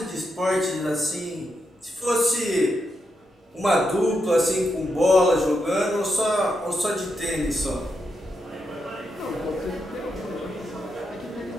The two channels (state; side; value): normal; both; correlation 0.84